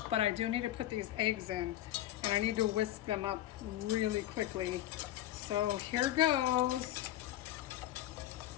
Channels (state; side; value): quieter; right; 13.6 dB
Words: but I do need to put these eggs in, and I need to whisk them up really quickly. So here goes.